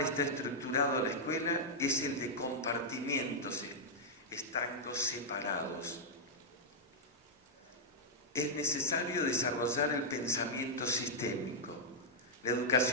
estructurado la escuela es el de compartimientos estancos separados. Es necesario desarrollar el pensamiento sistémico. La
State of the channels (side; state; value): both; normal; correlation -0.06